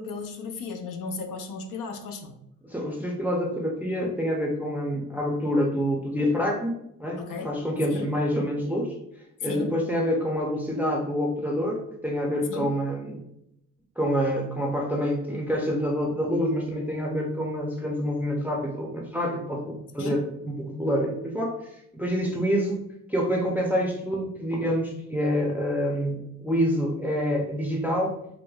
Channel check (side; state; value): both; normal; correlation 0.58